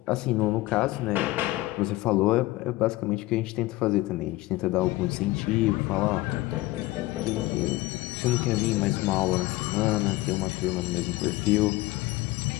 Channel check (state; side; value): quieter; right; 19.2 dB